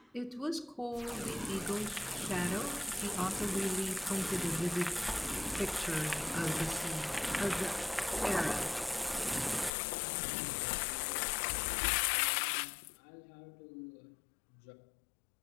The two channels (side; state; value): right; drops out; at 9.7 s